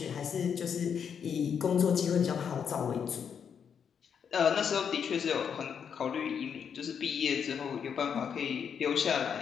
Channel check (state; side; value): quieter; right; 7.4 dB